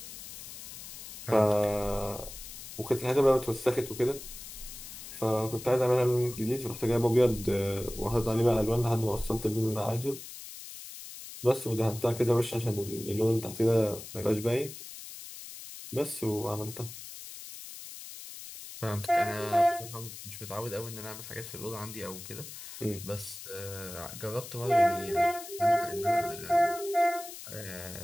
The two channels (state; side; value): noise; left; hiss, 12 dB below the sound